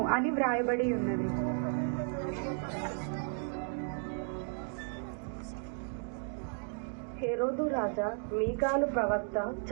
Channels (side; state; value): left; silent; 55 dB below the other